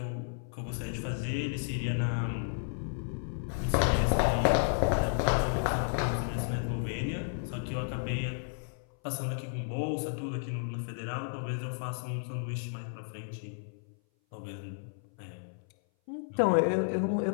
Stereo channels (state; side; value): silent; right; 56 dB below the other